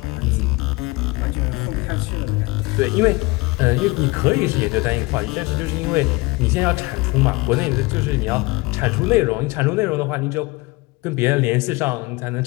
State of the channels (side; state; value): right; quieter; 24.0 dB